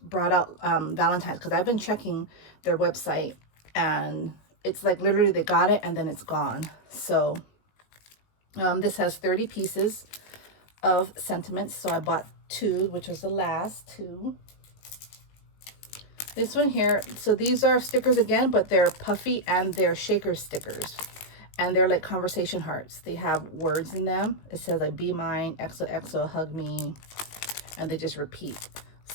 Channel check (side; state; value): right; late; 19 ms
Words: brought out Valentine's, because I've been checking their website and it's like literally they got it and then it's gone. So this has 30 pieces of sentiments. So I bought two, which was the last two. This one here, so these are stickers again, but they're puffy and they're shaker stickers. And they're like conversation hearts. They have words in them. It says like, be mine, XOXO, hug me. And they just repeat.